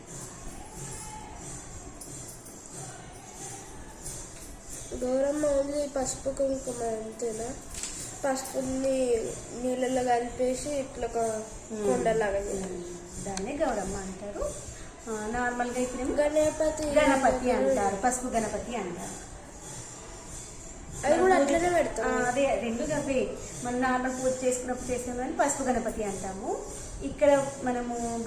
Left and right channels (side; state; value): both; identical; correlation 1.00